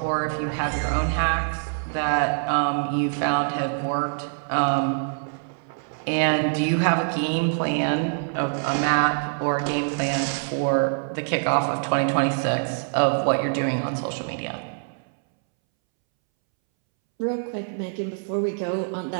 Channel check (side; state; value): left; silent; 62 dB below the other